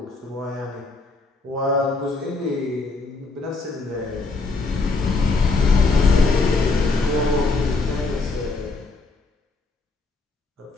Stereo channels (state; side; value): quieter; right; 3.7 dB